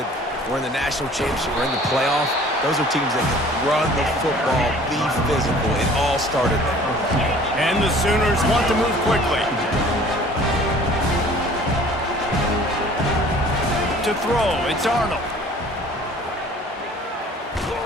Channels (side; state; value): both; normal; correlation 0.50